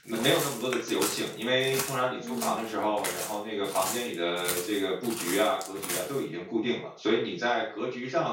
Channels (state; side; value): identical; both; correlation 1.00